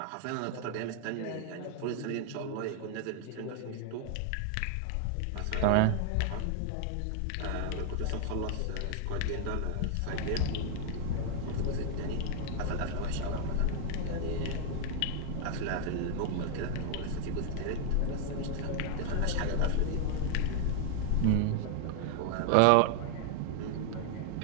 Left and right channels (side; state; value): both; different; correlation 0.00